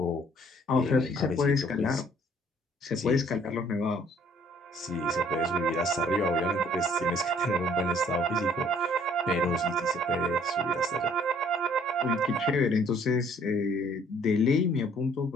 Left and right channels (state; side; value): normal; both; correlation 0.60